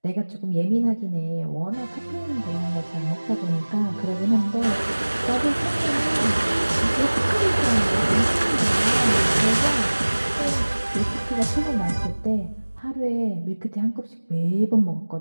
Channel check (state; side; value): inverted; both; correlation -1.00